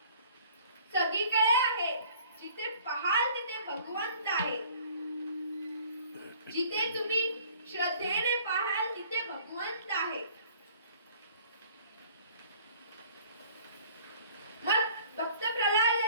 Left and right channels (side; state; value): both; inverted; correlation -0.53